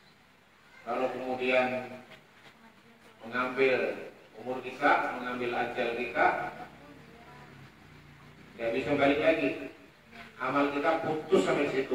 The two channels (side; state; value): both; identical; correlation 1.00